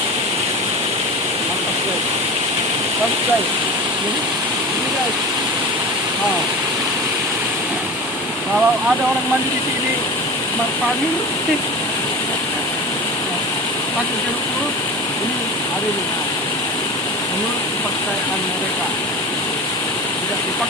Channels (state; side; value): normal; both; correlation 0.31